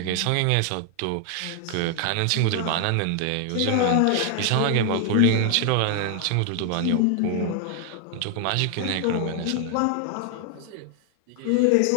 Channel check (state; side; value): different; both; correlation 0.00